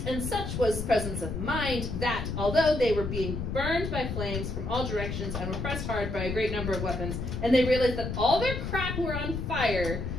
and such was presence of mind, that although they were being burned by flames from all directions and were pressed hard by a great number of weapons, and they realized that all their crap were on fire,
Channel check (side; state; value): left; noise; rumble, 4 dB below the sound